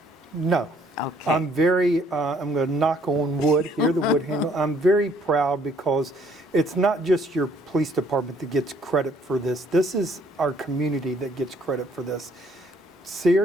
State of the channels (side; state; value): both; normal; correlation 0.63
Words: No. Okay. I'm going to knock on wood here, the wood handle. I'm very proud because it's not just your police department that gets credit for this. This is our community that gets credit for this.